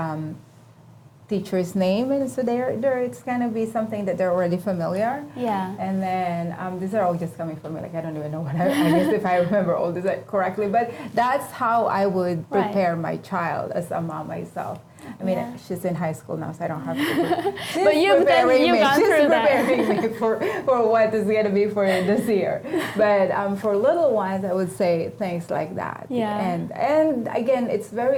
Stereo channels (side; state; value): both; identical; correlation 1.00